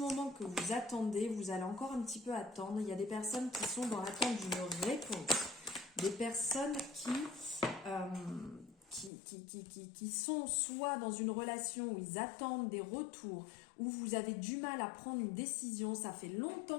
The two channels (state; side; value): drops out; right; at 9.1 s